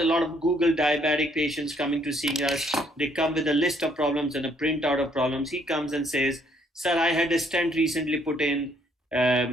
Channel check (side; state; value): both; normal; correlation 0.67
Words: lot of Google diabetic patients coming to see us. They come with a list of problems and a printout of problems. He comes and says, sir, I had a stent recently put in,